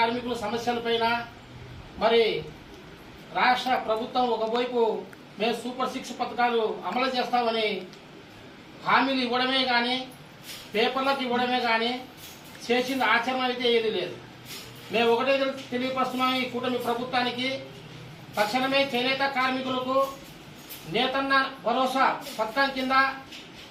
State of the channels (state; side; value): identical; both; correlation 1.00